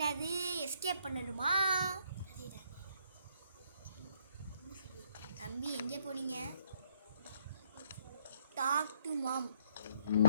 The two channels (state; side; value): inverted; both; correlation -0.68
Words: எஸ்கேப் பண்ணணுமா? தம்பி எங்கே போனீங்க? டாக் டு மாம்.